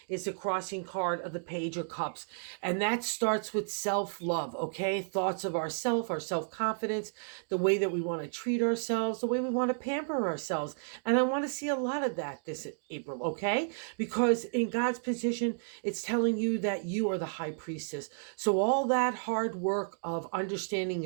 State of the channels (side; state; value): left; silent; digital silence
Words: is the crossing card of the Page of Cups. And that starts with self-love, okay? Thoughts of ourself, our self-confidence, the way that we want to treat ourselves, the way we want to pamper ourselves. And I want to see a lot of that this April, okay? Because in God's position, it's telling you that you are the high priestess. So all that hard work of understanding